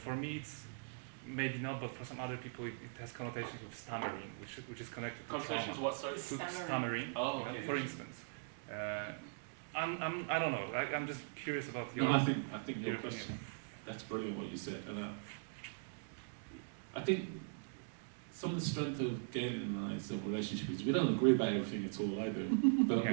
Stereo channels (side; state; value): left; silent; digital silence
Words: me it's maybe not, but for some other people it has connotations with stammering, which is connected to connotations what? Sorry, to stammering. Oh, you know, okay. for instance. I don't know. I'm just curious about your. No, I think your question. That's brilliant what you said, and I think some of the strength of Gaylene and I's relationship is we don't agree about everything at all either, but